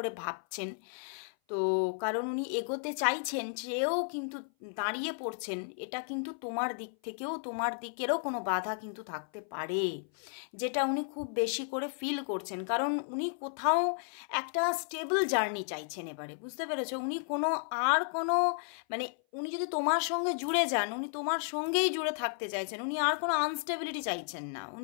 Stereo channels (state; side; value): silent; right; 56 dB below the other